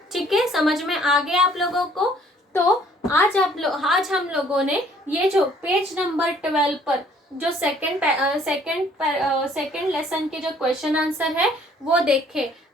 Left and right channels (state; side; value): normal; both; correlation 0.59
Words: ठीक है, समझ में आ गया आप लोगों को? तो आज हम लोगों ने ये जो पेज नंबर 12 पर जो सेकंड लेसन के जो क्वेश्चन आंसर है वो देखे।